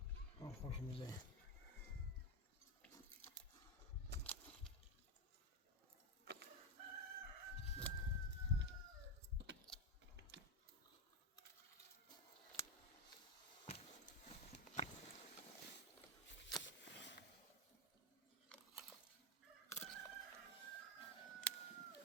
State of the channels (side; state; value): both; normal; correlation 0.06